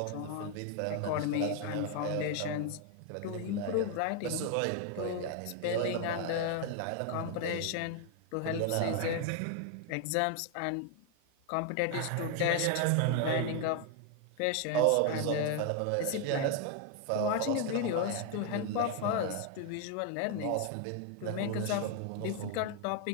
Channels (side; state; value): both; different; correlation 0.01